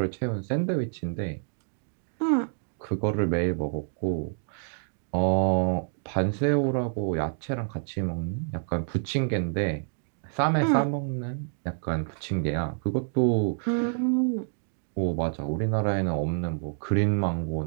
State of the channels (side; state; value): left; silent; digital silence